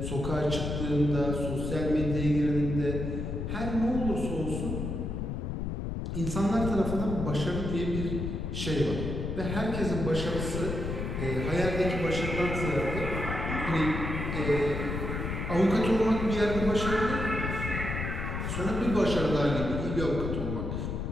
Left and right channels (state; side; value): noise; left; rumble, 3 dB below the sound